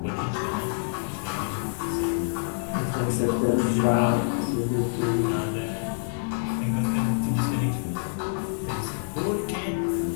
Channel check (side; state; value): right; silent; digital silence